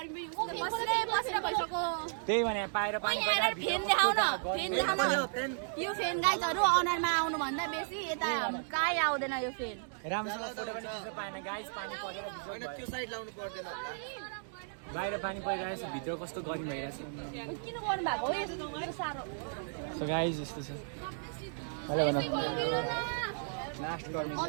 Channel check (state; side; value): silent; left; digital silence